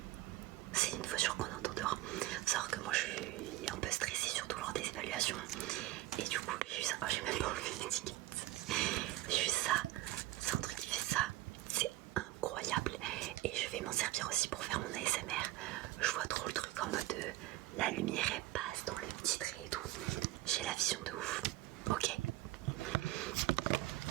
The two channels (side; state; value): left; quieter; 16.6 dB